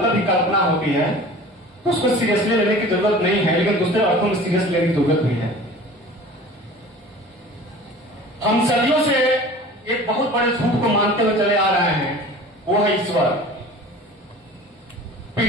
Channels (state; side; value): normal; both; correlation 0.42